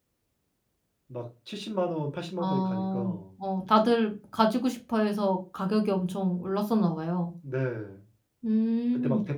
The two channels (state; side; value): identical; both; correlation 1.00